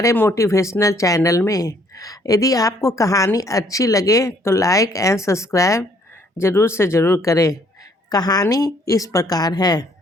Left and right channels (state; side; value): normal; both; correlation 0.64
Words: मोटिवेशनल चैनल में। यदि आपको कहानी अच्छी लगे तो लाइक एंड सब्सक्राइब ज़रूर से ज़रूर करें। कहानी इस प्रकार है।